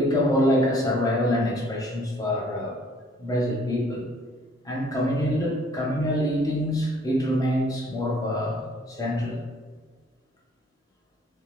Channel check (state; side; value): normal; both; correlation 0.59